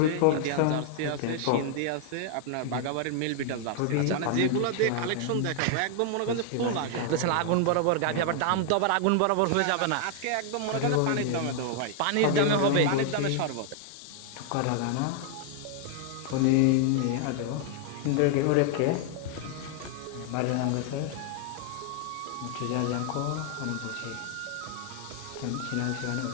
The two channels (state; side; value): different; both; correlation 0.00